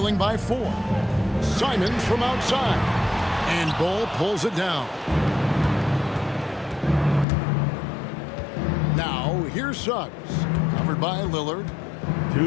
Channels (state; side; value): drops out; right; at 7.2 s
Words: by 4. Simons from outside. And Bull pulls it down. Now, here's Suggs. Covered by Lillard. 2